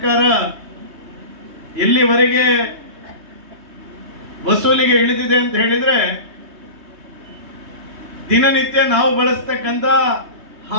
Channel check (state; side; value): late; left; 3.2 ms